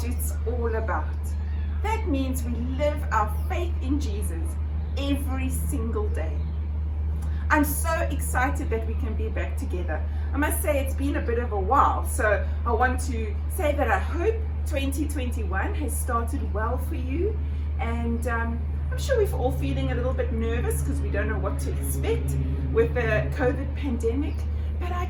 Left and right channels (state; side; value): identical; both; correlation 1.00